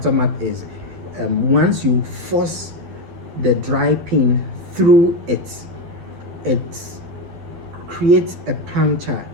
is once you force the dry pin through it, it creates a puncture,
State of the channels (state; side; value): late; left; 11 ms